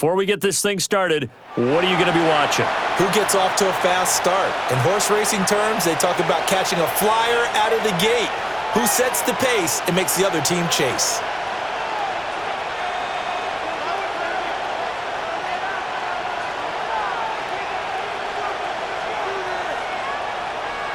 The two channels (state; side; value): identical; both; correlation 1.00